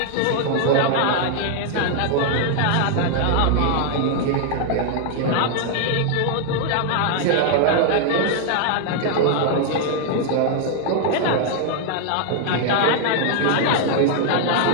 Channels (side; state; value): both; different; correlation 0.00